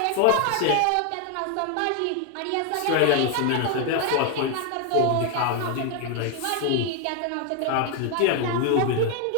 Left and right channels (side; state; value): both; different; correlation 0.00